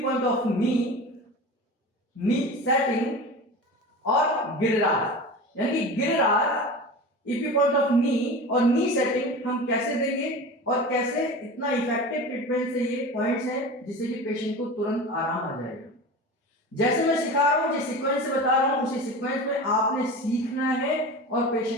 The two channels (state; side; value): normal; both; correlation 0.31